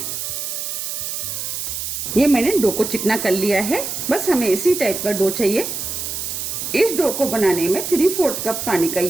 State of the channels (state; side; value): noise; right; hiss, 4 dB below the sound